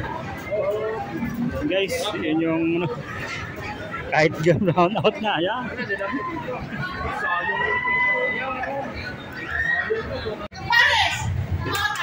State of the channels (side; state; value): both; identical; correlation 1.00